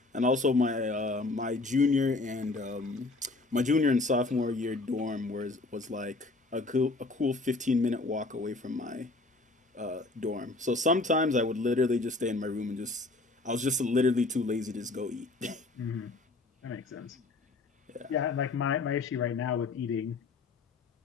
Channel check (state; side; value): quieter; right; 3.3 dB